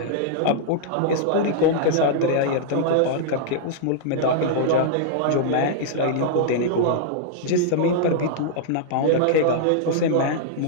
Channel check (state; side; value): different; both; correlation -0.02